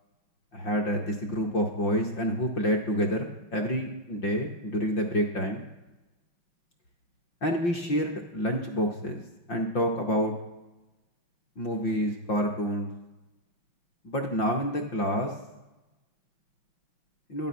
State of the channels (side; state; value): right; late; 5.7 ms